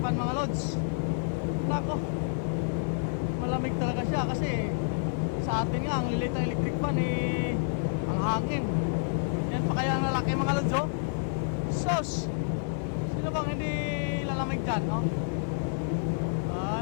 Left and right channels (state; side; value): silent; right; digital silence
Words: fan mga lods. Nako, malamig talaga siya kasi sa atin nga, ang lilit ng electric fan ang hangin. Yan pa kaya ang lalaki mga lods, oh. Sos! Sino bang hindi lalamig dyan, no? Ay,